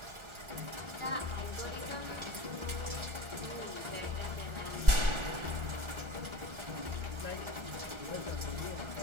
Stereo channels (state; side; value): late; left; 1.4 ms